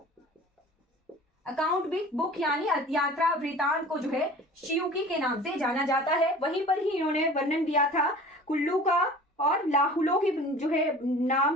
अकाउंट बुक, यानी यात्रा वृतांत को जो है शियुकी के नाम से जाना जाता है। वहीं पर ही इन्होंने वर्णन दिया था कुल्लू का और लाहुलो के जो है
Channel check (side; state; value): both; normal; correlation 0.42